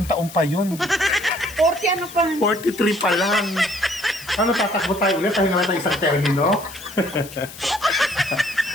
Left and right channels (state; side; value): noise; left; hiss, 15 dB below the sound